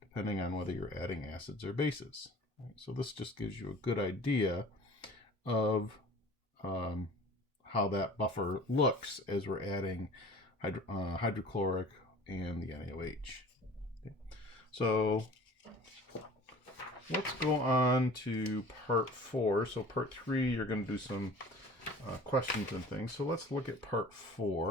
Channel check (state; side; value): normal; both; correlation 0.44